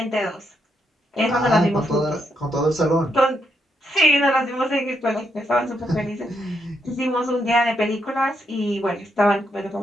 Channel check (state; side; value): normal; both; correlation 0.79